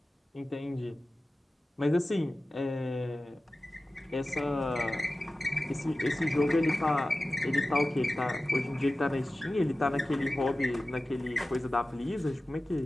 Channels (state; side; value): normal; both; correlation 0.96